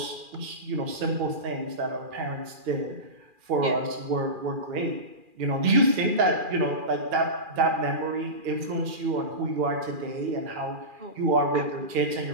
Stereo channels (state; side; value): late; left; 2.4 ms